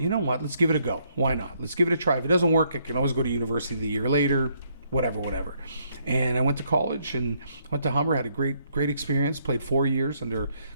know what, let's give it a go. Why not? Let's give it a try. If it doesn't work, I can always go to university the year later, whatever. And I went to college and went to Humber, had a great experience, played 4 years under a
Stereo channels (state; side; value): inverted; both; correlation -0.71